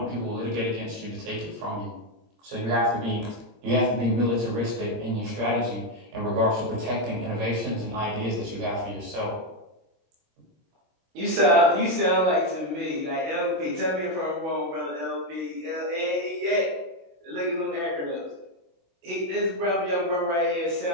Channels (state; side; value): late; left; 23 ms